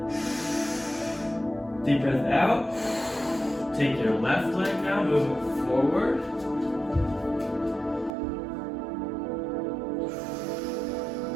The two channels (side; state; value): left; drops out; at 8.2 s